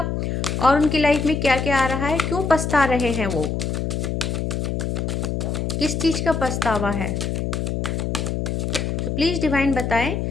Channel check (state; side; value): noise; left; hum, 1 dB below the sound